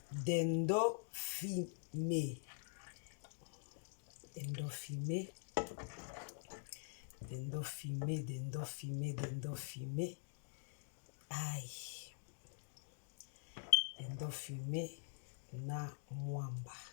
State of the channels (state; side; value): silent; right; digital silence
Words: Dendo fumé. Aïe. Dendo fumé na mwamba.